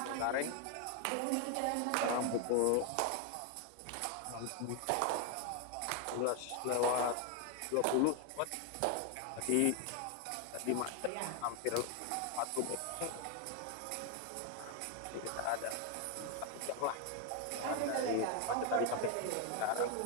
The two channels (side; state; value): both; different; correlation 0.01